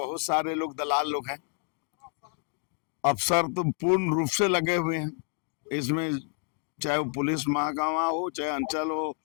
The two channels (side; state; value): right; quieter; 38.2 dB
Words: सारे लोग दलाल लोग हैं। अफसर तो पूर्ण रूप से लगे हुए हैं इसमें, चाहे वो पुलिस महकमा हो, चाहे अंचल हो,